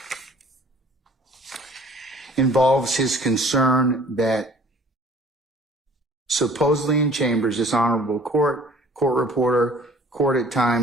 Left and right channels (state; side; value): normal; both; correlation 0.52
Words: involves his concern that supposedly in chambers, this honorable court reporter, court at